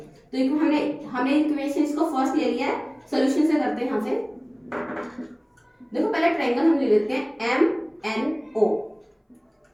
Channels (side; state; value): both; identical; correlation 1.00